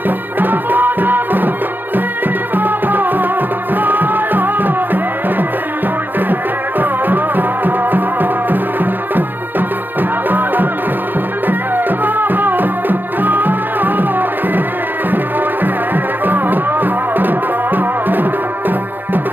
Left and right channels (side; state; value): left; late; 0.092 ms